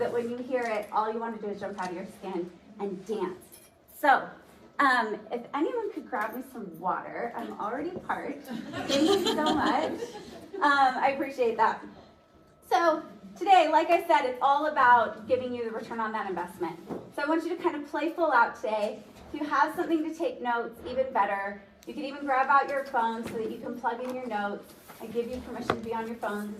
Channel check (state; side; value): identical; both; correlation 1.00